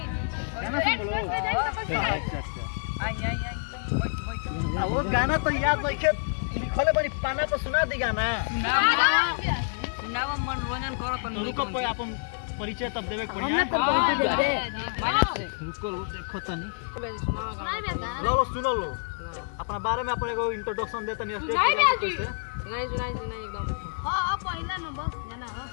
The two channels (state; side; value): silent; right; digital silence